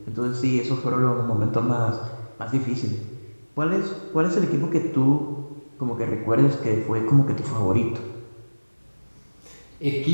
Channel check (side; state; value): both; inverted; correlation -1.00